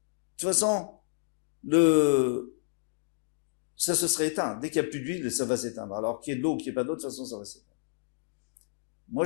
toute façon, ça se serait éteint. Dès qu'il n'y a plus d'huile, ça va s'éteindre. Alors qu'il y ait de l'eau ou qu'il n'y ait pas d'eau, de toute façon, ça va s'éteindre. Moi,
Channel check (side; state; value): right; silent; digital silence